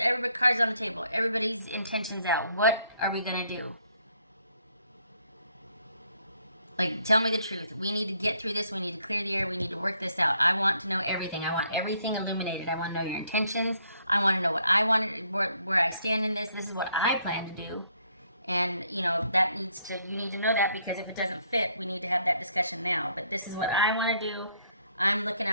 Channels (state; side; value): inverted; both; correlation -0.69